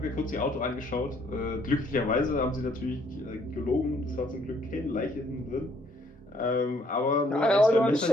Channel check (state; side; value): normal; both; correlation 0.66